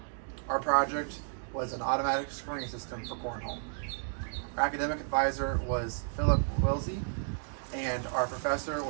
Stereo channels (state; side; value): silent; left; digital silence